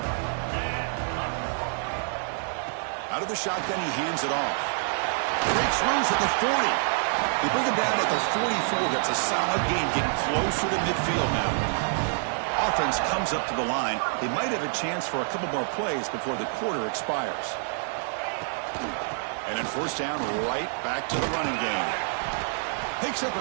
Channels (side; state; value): left; silent; 60 dB below the other